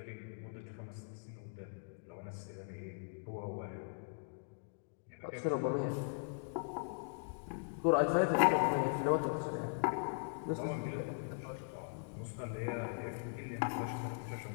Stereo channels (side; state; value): right; silent; digital silence